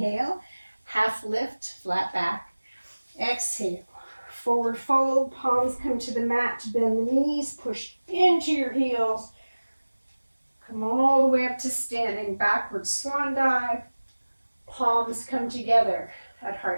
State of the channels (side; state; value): both; inverted; correlation -1.00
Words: half lift, flat back. Exhale, forward fold, palms come to the mat, bend the knees, push into your heels. Come all the way up to standing, backward swan dive. Palms come together at